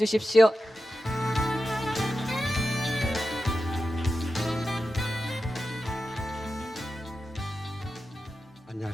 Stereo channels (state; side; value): normal; both; correlation 0.92